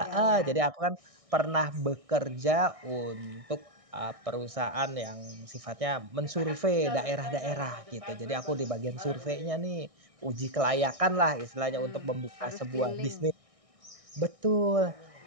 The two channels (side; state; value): left; late; 1.6 ms